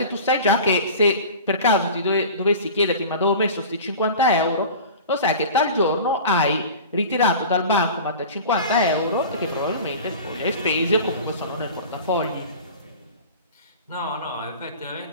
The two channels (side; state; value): both; inverted; correlation -0.36